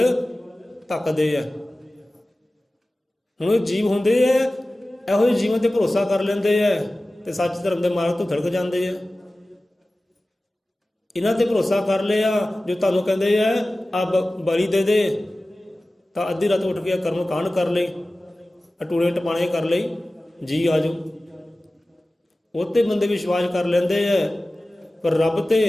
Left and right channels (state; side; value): normal; both; correlation 0.96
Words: ਧੱਕਦੇ ਆ। ਹੁਣ ਉਹ ਜੀਵ ਹੁੰਦੇ ਆ, ਇਹੋ ਜਿਹੇ ਜੀਵਨ ਤੇ ਭਰੋਸਾ ਕਰ ਲੈਂਦੇ ਆ ਤੇ ਸੱਚ ਧਰਮ ਦੇ ਮਾਰਗ ਤੋਂ ਥੜਕ ਜਾਂਦੇ ਆ। ਇਹਨਾਂ ਤੇ ਭਰੋਸਾ ਕਰ ਲਿਆ, ਜੋ ਤੁਹਾਨੂੰ ਕਹਿੰਦੇ ਆ ਆ ਬਲੀ ਦੇ ਦੇ, ਤਾਂ ਅੱਧੀ ਰਾਤ ਉੱਠ ਕੇ ਕਰਮ ਕਾਂਡ ਕਰ ਲਈ, ਟੂਣੇ ਟਪਾਣੇ ਕਰ ਲਈ, ਜੀ ਆ ਜਾਓ। ਉਹ ਤੇ ਬੰਦੇ ਵਿਸ਼ਵਾਸ ਕਰ ਲੈਂਦੇ ਆ, ਪਰ ਰੱਬ ਤੇ